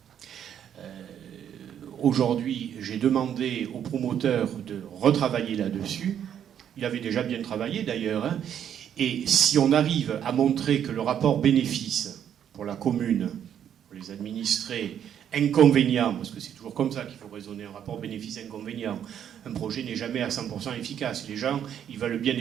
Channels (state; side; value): quieter; left; 9.4 dB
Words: Aujourd'hui, j'ai demandé au promoteur de retravailler là-dessus. Il avait déjà bien travaillé d'ailleurs, hein, et si on arrive à montrer que le rapport bénéfice pour la commune, pour les administrés, inconvénient, parce que c'est toujours comme ça qu'il faut raisonner, un rapport bénéfice-inconvénient. Un projet n'est jamais à 100% efficace. Les gens, ils veulent bien